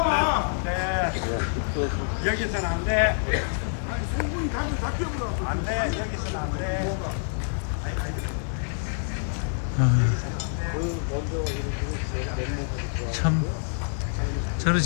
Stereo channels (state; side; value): silent; right; 60 dB below the other